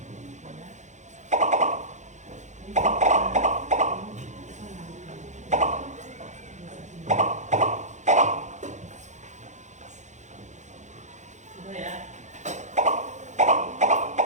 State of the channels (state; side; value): late; left; 0.34 ms